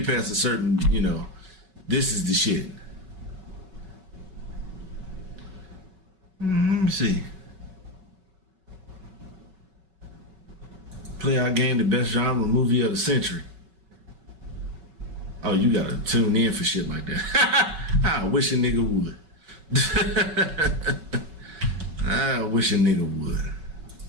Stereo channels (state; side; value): late; left; 5.3 ms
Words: past a certain, this is the shit. Let me see. Play our game, the best genre movie of the century. Oh, you gotta tune in for shit like that. I wish a nigga would. I wish a nigga would.